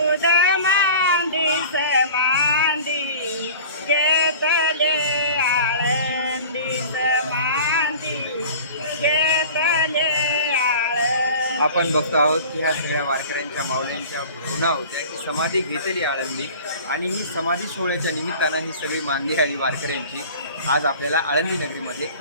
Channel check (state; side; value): inverted; both; correlation -0.41